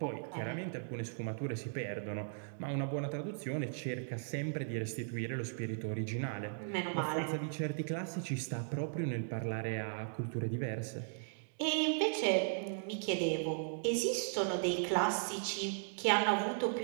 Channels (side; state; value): left; silent; digital silence